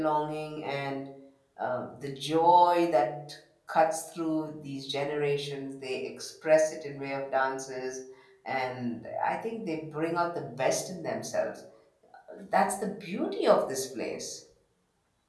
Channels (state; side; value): identical; both; correlation 1.00